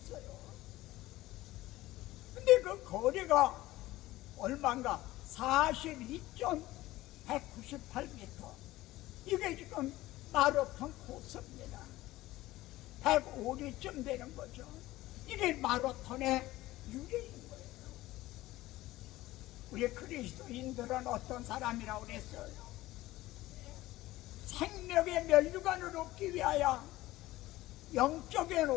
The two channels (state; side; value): quieter; right; 17.3 dB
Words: 근데 그 거리가 얼마인가? 42.198m. 이게 지금 마라톤 코스입니다. 105리쯤 되는 거죠. 이게 마라톤의 유래인 거예요. 우리 그리스도인들은 어떤 사람이라고 그랬어요? 생명의 면류관을 얻기 위하여 영적인